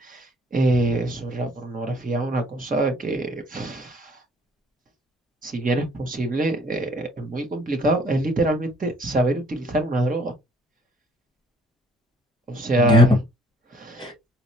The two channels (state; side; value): normal; both; correlation 0.60